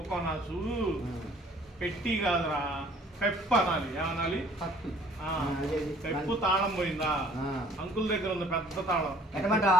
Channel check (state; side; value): normal; both; correlation 0.56